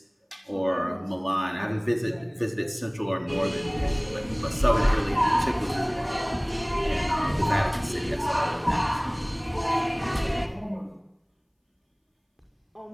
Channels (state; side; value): identical; both; correlation 1.00